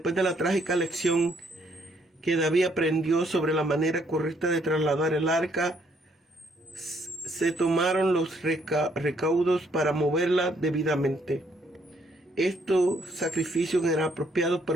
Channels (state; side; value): normal; both; correlation 0.69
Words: trágica lección que David aprendió sobre la manera correcta de trasladar el arca, se tomaron los recaudos para moverla debidamente. Estos sacrificios eran apropiados